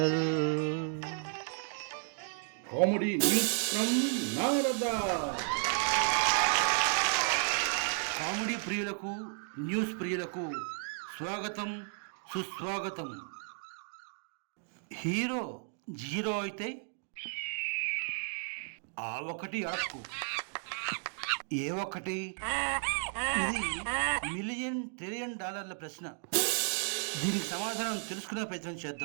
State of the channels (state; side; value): silent; left; 55 dB below the other